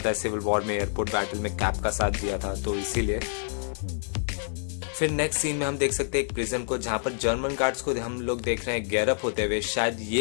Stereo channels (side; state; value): right; silent; digital silence